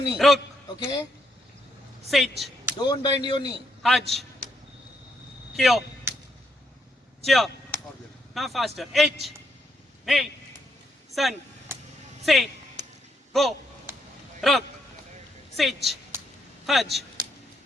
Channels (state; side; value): normal; both; correlation 0.76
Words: knee. Rug. Okay, Sich. don't bend your knee. Haj. Kyo. Cheer. Now faster. H. Hey. Sun. Say. Go. Rug. Sich. Haj.